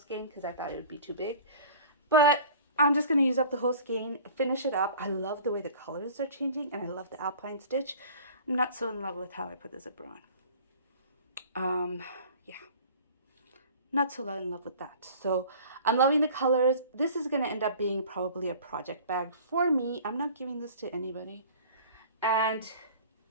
because I thought it would be too big, but I'm just going to use up the whole skein, finish it up. I love the way the colors are changing, and I love the alpine stitch. I'm not so in love with how I put the zipper on. Yeah. Not so in love with that. So I'm loving the colors. This is going to end up being probably a project bag for me. I'm not giving this to anybody. And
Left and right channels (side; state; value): both; inverted; correlation -0.44